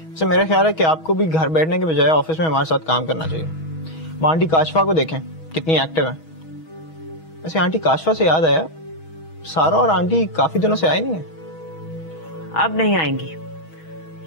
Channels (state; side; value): late; right; 6.2 ms